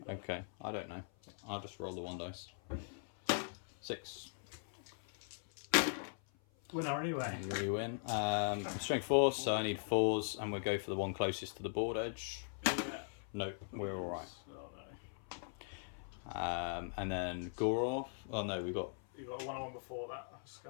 Though. Okay, I don't know. I'll just roll the 1 dice. 6. Winner anyway. We win. Strength 4, so I need 4s, and we'll go for the one closest to the board edge. Yeah. No, we're alright. Oh no. And then Gorov. Oh no, we got. You got a 1-on-1 before that.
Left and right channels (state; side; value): silent; right; 51 dB below the other